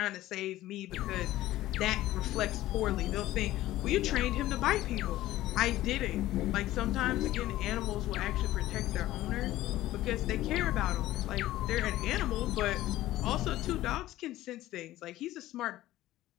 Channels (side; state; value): right; quieter; 15.4 dB